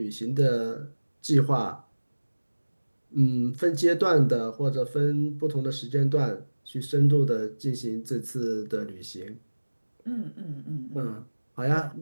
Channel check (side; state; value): both; inverted; correlation -1.00